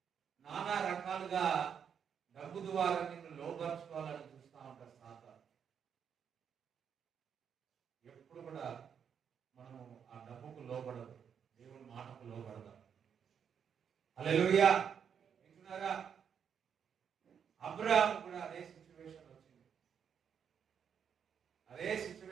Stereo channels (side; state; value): left; quieter; 7.6 dB